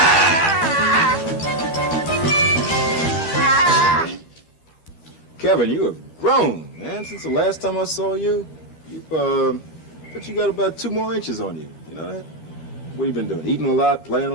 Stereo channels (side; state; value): right; late; 13 ms